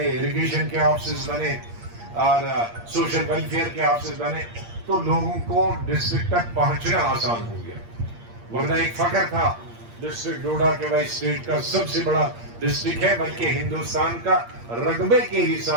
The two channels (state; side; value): late; left; 8.6 ms